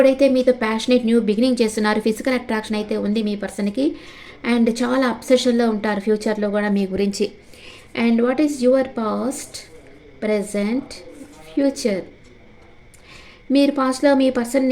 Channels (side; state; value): both; identical; correlation 1.00